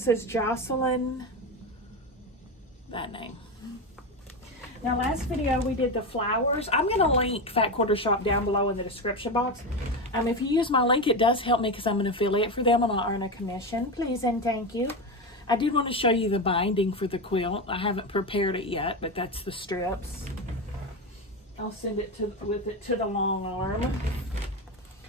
is Jocelyn, that name. Now, last video we did the flowers. I'm going to link Fat Quarter Shop down below in the description box. If you use my link, it does help me because I'm an affiliate for them and I'll earn a commission. Please and thank you. I did want to show you the binding for the quilt. I haven't prepared it yet, but that's the strips. I'll send it with it to the long arm.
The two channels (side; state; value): both; normal; correlation 0.17